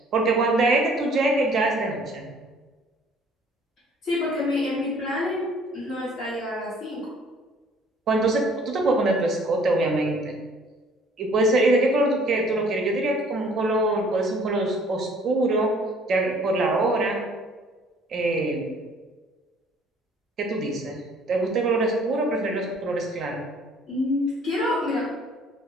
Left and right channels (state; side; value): normal; both; correlation 0.57